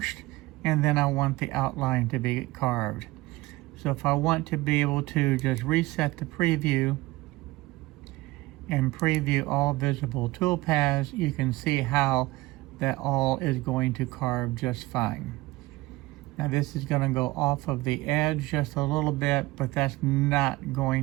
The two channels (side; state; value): left; quieter; 19.7 dB